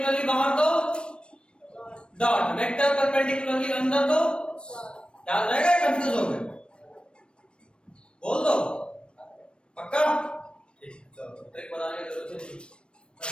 बाहर तो डॉट, वेक्टर परपेंडिकुलरली अंदर तो याद रहेगा, कंफ्यूज हो गए? बोल दो पक्का? ठीक, चलो ट्रिक बनाने की जरूरत नहीं,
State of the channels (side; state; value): right; late; 0.056 ms